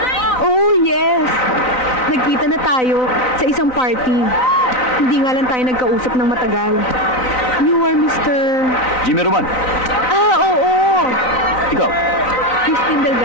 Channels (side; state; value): right; late; 3.9 ms